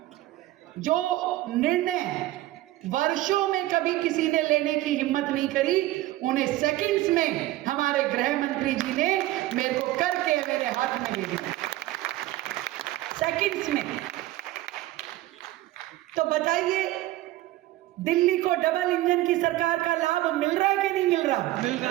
जो निर्णय वर्षों में कभी किसी ने लेने की हिम्मत नहीं करी, उन्हें सेकंड्स में हमारे गृह मंत्री जी ने मेरे को करके मेरे हाथ में दे दिया, सेकंड्स में। तो बताइए, दिल्ली को डबल इंजन की सरकार का लाभ मिल रहा है कि नहीं मिल रहा? मिल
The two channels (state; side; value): quieter; left; 16.6 dB